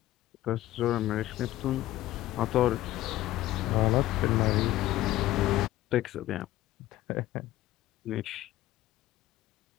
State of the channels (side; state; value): right; quieter; 15.4 dB